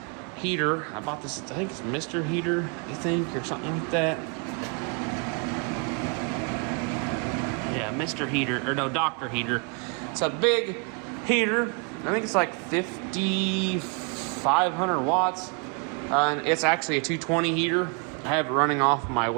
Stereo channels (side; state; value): left; quieter; 34.3 dB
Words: heater. I bought this, I think it's Mr. Heater, or something like that. Yeah, Mr. Heater, or no, Dr. Heater. It's a big heater. I think it's like 5,500 watts. And it's actually a 220 heater. I have it running off my